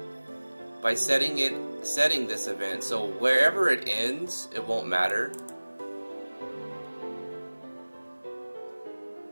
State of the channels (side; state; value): both; inverted; correlation -1.00